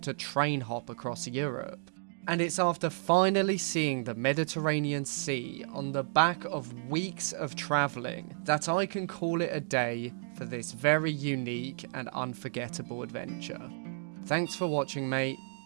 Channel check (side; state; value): left; silent; digital silence